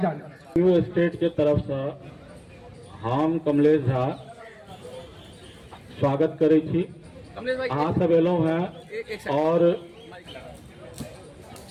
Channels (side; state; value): both; identical; correlation 1.00